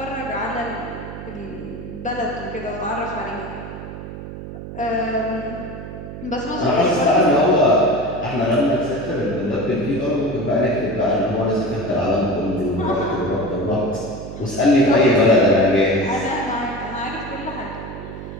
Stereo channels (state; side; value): noise; right; hum, 10 dB below the sound